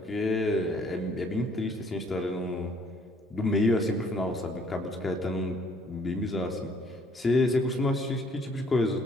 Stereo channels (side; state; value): both; normal; correlation 0.62